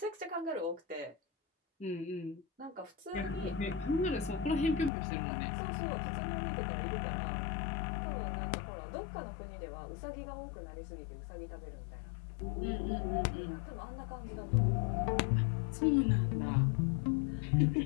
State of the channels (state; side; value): drops out; right; at 4.9 s